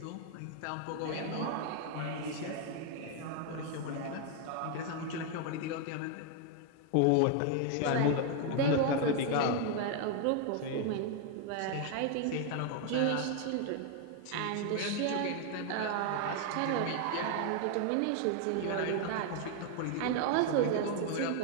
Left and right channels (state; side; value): different; both; correlation 0.00